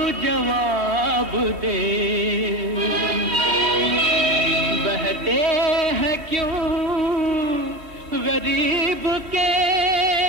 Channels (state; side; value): late; left; 3.1 ms